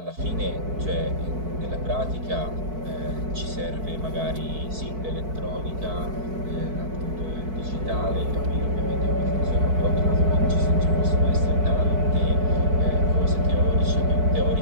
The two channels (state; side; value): late; left; 4.6 ms